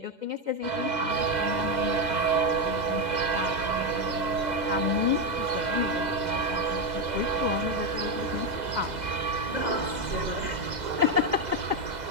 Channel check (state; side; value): late; left; 2.0 ms